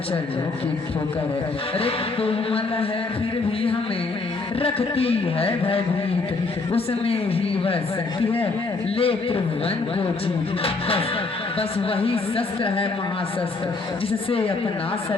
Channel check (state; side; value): quieter; right; 3.8 dB